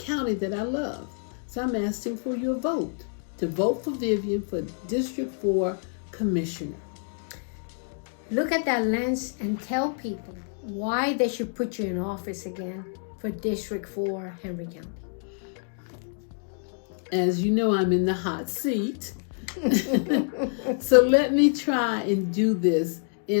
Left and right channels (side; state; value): right; silent; 57 dB below the other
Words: that I love. So I'm asking for your vote, to vote for Vivian for District 4 Commissioner. Look at that lens and tell people why they should put you in office again for District 4 Henry County. As you know, I'm in the hot seat. So let me try and do this